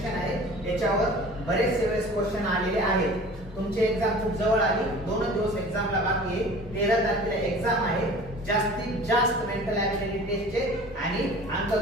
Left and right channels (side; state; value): both; normal; correlation 0.43